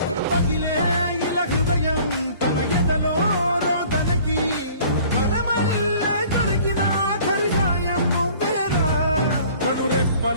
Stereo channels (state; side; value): inverted; both; correlation -0.51